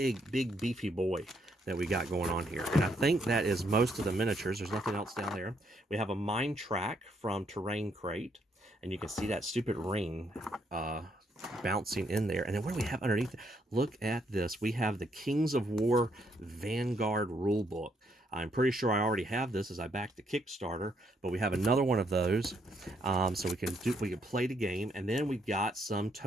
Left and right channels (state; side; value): normal; both; correlation 0.73